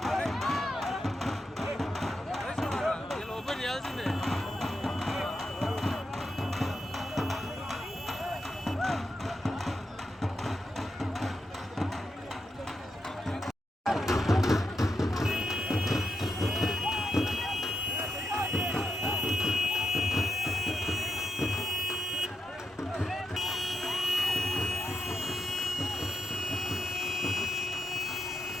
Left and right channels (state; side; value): normal; both; correlation 0.86